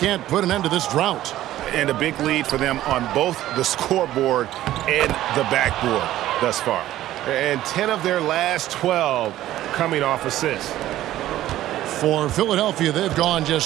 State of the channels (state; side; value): quieter; left; 14.0 dB